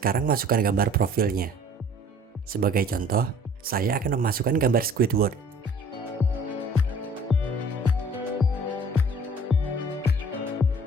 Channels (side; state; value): both; normal; correlation 0.52